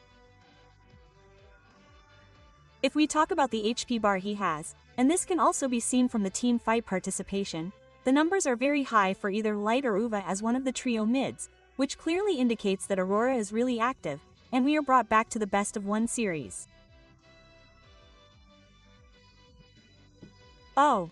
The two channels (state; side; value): identical; both; correlation 1.00